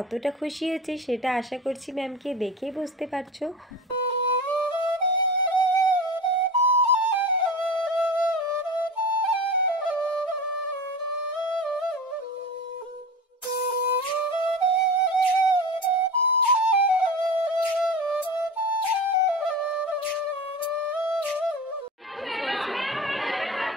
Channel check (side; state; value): both; normal; correlation 0.30